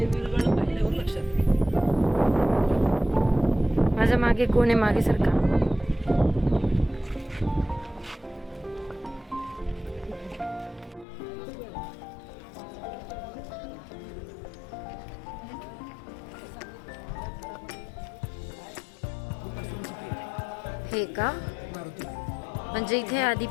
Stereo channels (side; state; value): right; drops out; at 11.1 s